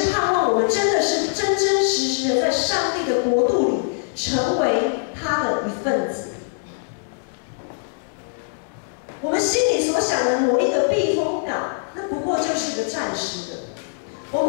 盼望我们真的是真真实实的在上帝的国度里成为他的一份子？我们心里所想的某一个避风港，那不过就是一个暂时的，我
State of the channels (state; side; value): silent; right; digital silence